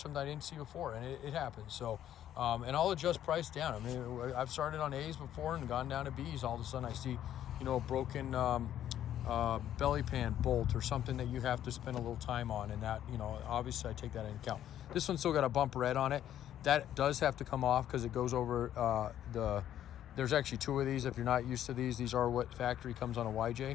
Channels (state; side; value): quieter; right; 11.2 dB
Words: I didn't see before, and it happens. So, and I'll adjust price down. I mean, I've started on A's before and gone down to B's. All of a sudden I see, a broken belly pan bolt or something that you have to spend a little time on, and that, obviously I take that into account. This one's still got a bump red on it. That does have to come off because it goes over there's actually two of these. If you're not used to these are what factory comes on a